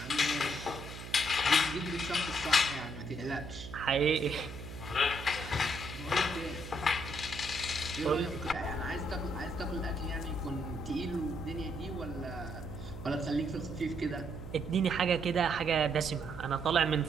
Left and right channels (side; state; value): right; noise; hum, 11 dB below the sound